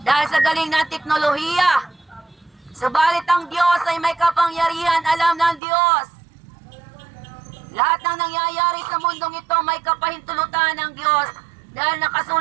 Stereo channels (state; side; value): drops out; left; at 5.6 s